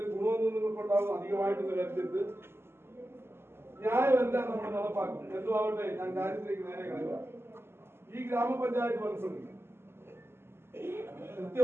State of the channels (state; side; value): late; left; 0.12 ms